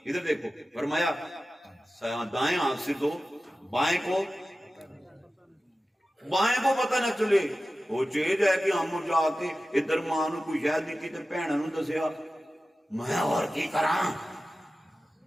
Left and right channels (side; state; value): both; normal; correlation 0.95